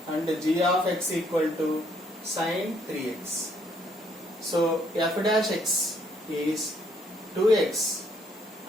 and g of x equal to sin 3x. So f dash x is 2x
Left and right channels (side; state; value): both; normal; correlation 0.68